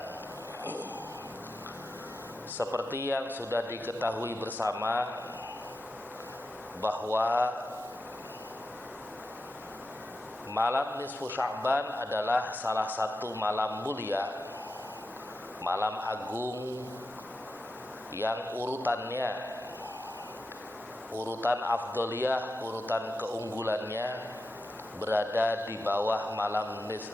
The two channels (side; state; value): both; normal; correlation 0.88